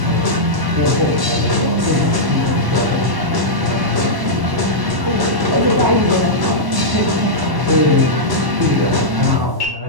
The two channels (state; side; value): late; left; 1.1 ms